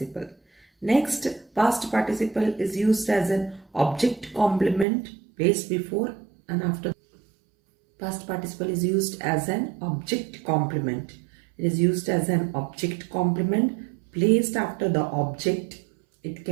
Next, past participle is used as an object complement placed before and after. Past participle is used as an object complement. It is used as an object complement placed after the object. It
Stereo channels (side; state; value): left; drops out; at 4.9 s